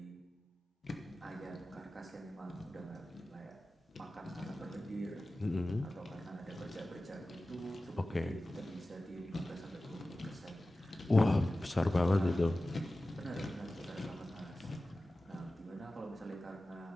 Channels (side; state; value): both; normal; correlation 0.96